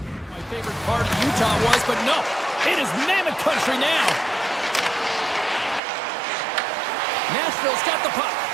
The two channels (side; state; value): left; drops out; at 5.8 s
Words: My favorite part of Utah was, but no, it is Mammoth country now. Nashville's got the puck.